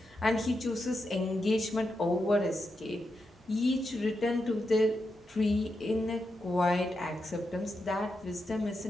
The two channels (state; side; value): normal; both; correlation 0.86